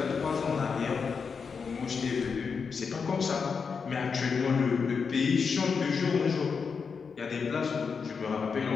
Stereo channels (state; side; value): quieter; right; 5.6 dB